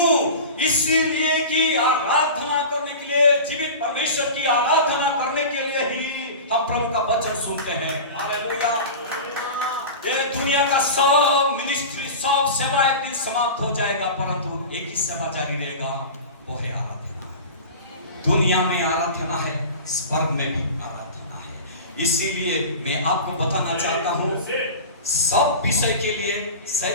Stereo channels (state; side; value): inverted; both; correlation -0.32